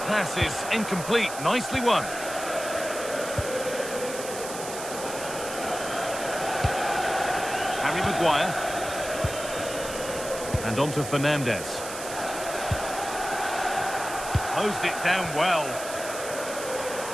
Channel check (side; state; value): right; noise; hiss, 9 dB below the sound